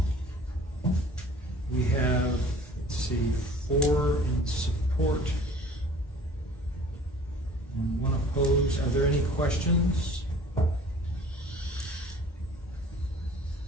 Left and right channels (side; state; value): both; normal; correlation 0.49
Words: We have, let's see, 4 in support and 1 opposed. Are there any questions?